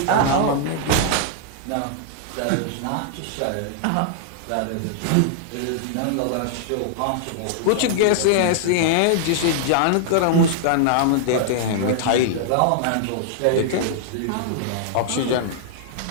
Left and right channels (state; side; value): different; both; correlation -0.01